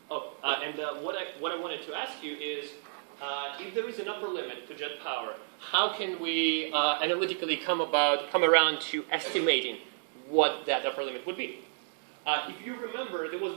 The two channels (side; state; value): left; silent; digital silence